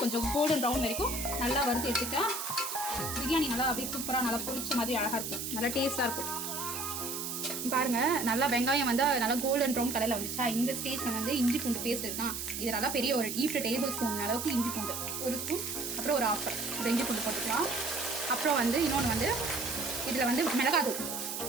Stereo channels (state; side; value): noise; right; hiss, 4 dB below the sound